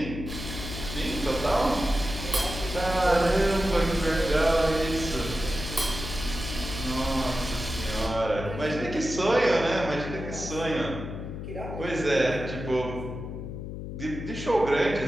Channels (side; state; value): left; noise; hum, 7 dB below the sound